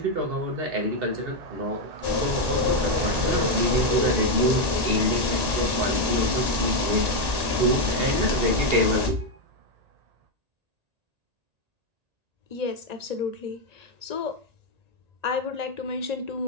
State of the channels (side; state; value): left; late; 1.8 ms